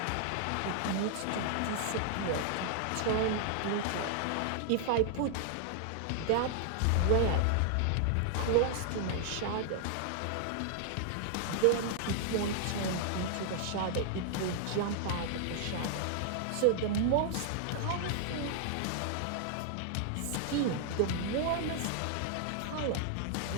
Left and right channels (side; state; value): both; different; correlation 0.00